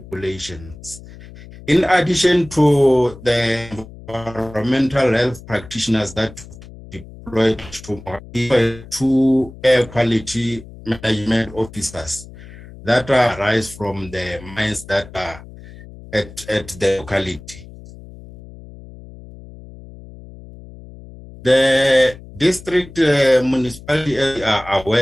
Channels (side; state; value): left; noise; hum, 18 dB below the sound